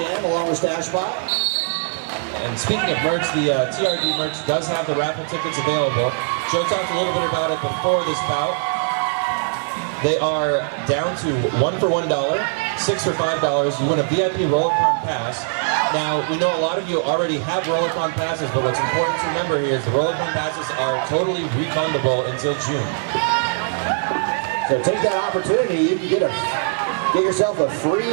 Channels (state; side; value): silent; left; digital silence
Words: along with Stash Spot. And speaking of merch, the TRD merch does have the raffle tickets available. Joe talked a little bit about it before this bout. They are down to 1 for $1, 6 for $5. You win a VIP Rollicon pass. Now, we know a lot of you already have Rollicon passes, but what's important to remember here is the Rollicon passes are totally refundable until June. So take that opportunity. You can get yourself a